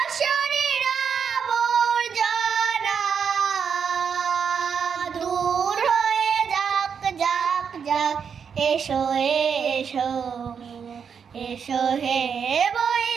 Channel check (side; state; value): left; quieter; 6.8 dB